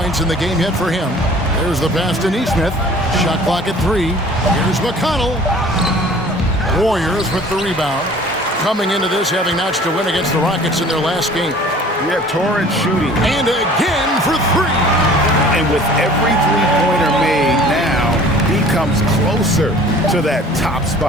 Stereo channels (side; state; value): both; normal; correlation 0.49